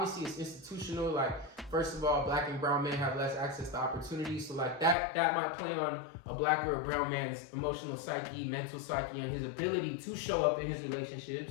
it's institutional. Like first of all, black and brown men have less access to opportunities. So like that might play on a black or a brown man's emotional psyche, mental psyche, and his ability to show up in his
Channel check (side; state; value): right; drops out; at 5.0 s